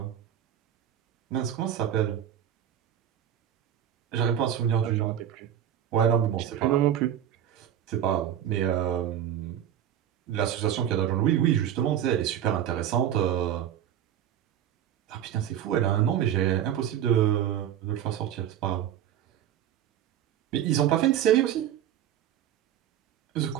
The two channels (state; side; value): quieter; left; 10.4 dB